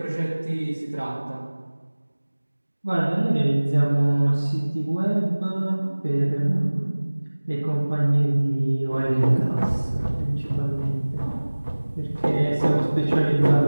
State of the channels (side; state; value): both; inverted; correlation -1.00